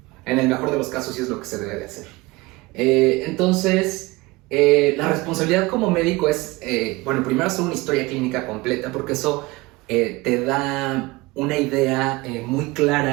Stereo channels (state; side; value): quieter; left; 22.2 dB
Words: En el mejor de los casos sí es lo que se debe de hacer. Entonces, la responsabilidad como médico es, primero hacer una historia clínica completa, porque eso te da una idea muy